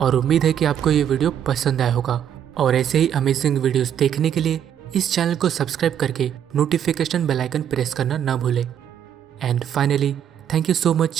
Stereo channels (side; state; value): left; quieter; 9.4 dB